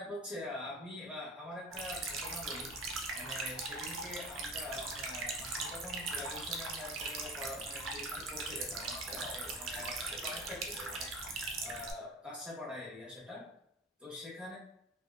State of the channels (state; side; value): normal; both; correlation 0.34